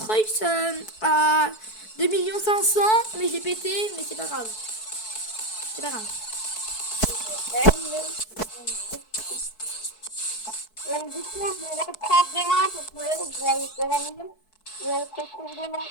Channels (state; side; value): late; right; 4.6 ms